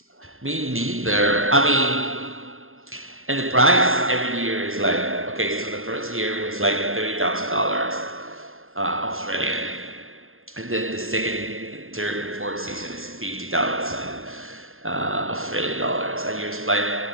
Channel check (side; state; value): left; late; 0.60 ms